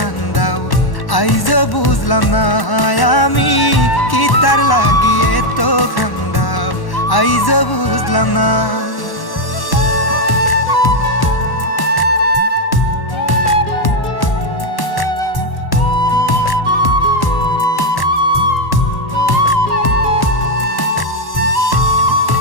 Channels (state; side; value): late; right; 1.1 ms